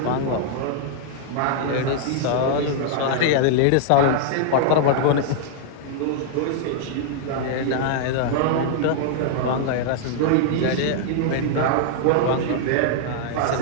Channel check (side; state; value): both; different; correlation -0.01